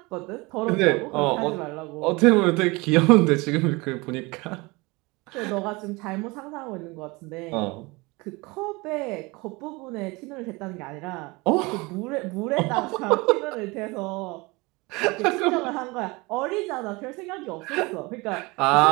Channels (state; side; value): quieter; left; 24.6 dB